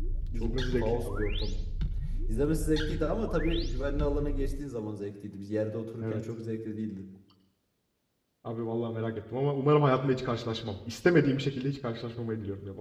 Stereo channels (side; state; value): both; identical; correlation 1.00